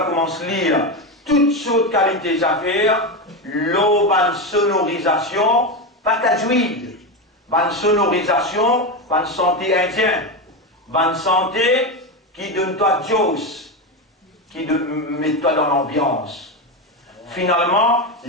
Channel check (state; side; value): normal; both; correlation 0.14